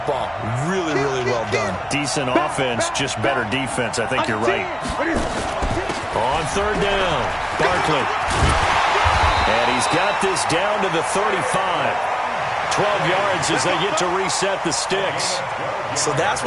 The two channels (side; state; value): both; identical; correlation 1.00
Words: Really, really well done. Decent offense, just better defense. I think you're right. On third down, Barkley. And he's got this down to the 35. 12 yards as they get to reset the sticks. So that's